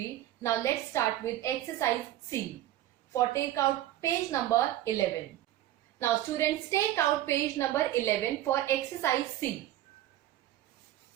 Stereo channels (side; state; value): left; quieter; 13.7 dB